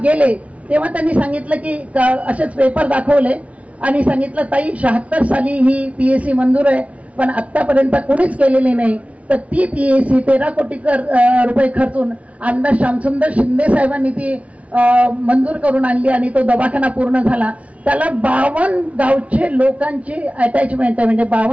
गेले तेव्हा त्यांनी सांगितलं की असेच पेपर दाखवले आणि सांगितलं, ताई 76 साली ही PAC मंजूर आहे, पण आतापर्यंत कोणीच केलेली नाही. तर ती PAC 13 कोटी रुपये खर्चून आमदार श्यामसुंदर शिंदे साहेबांनी ती मंजूर करून आणली आणि तो दवाखाना पूर्ण झाला. त्याला 52 गावचे लोकांची अटॅचमेंट आहे, म्हणजे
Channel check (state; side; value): late; left; 0.065 ms